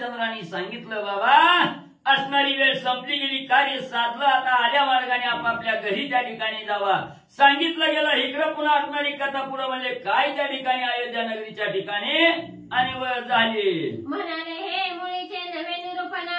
सांगितलं बाबा असणारी वेळ संपली गेली, कार्य साधलं, आता आल्या मार्गाने आपापल्या घरी त्या ठिकाणी जावा. सांगितलं गेलं. इकडं पुन्हा असणारी कथा पुढं म्हणजे काय त्या ठिकाणी अयोध्या नगरीच्या ठिकाणी आणि झाली. म्हणाले हे मुळीचे नवे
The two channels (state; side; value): identical; both; correlation 1.00